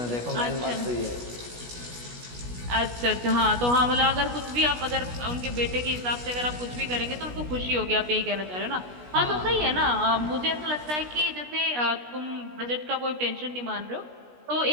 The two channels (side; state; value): left; late; 16 ms